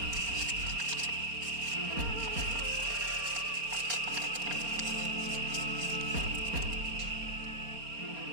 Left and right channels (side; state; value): left; late; 4.3 ms